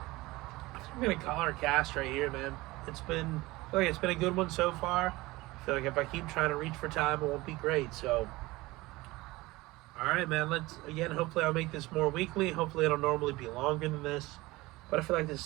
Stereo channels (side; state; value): left; quieter; 20.4 dB